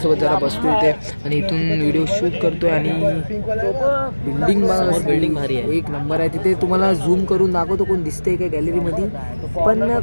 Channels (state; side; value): inverted; both; correlation -1.00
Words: जरा बसतो इथे आणि इथून व्हिडिओ शूट करतोय. आणि बिल्डिंग भारी आहे, एक नंबर आहे. तिथे तुम्हाला झूम करून दाखवतो कोण दिसतंय का गॅलरीमध्ये, पण